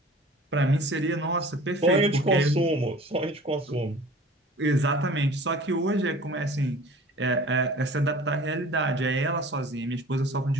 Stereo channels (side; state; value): both; normal; correlation 0.45